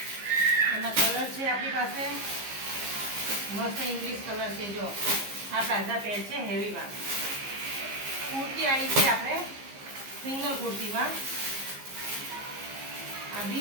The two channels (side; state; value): left; late; 15 ms